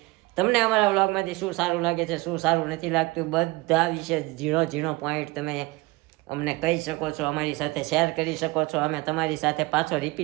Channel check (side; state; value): left; quieter; 22.8 dB